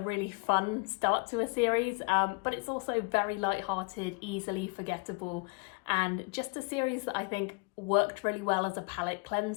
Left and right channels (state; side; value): quieter; right; 31.3 dB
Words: fun start to a series, but it's also very light-hearted, easily forgettable, and just a series that I think worked really well as a palate